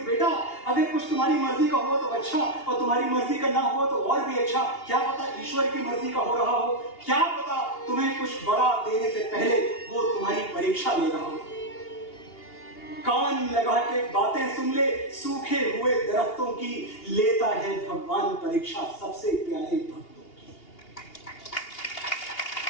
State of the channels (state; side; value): late; right; 2.8 ms